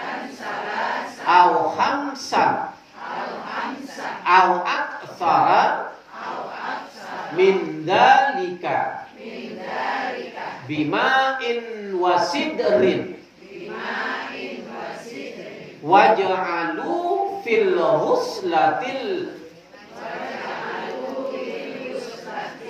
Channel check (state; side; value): identical; both; correlation 1.00